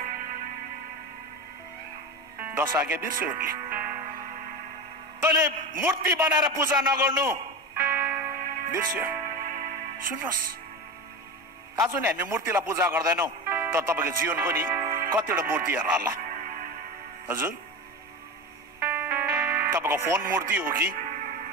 10 आज्ञा बिर्स्यो उनले। तैँले मूर्ति बनाएर पूजा नगर्नु बिर्स्यो। सुन्नुहोस्, आज नि हामी मूर्तिलाई पूजा गर्दैनौँ, तर तपाईँको जीवनको नि कतिवटा मूर्तिहरू होला। हजुर, तपाईँको फोन मूर्ति हो कि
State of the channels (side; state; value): both; normal; correlation 0.24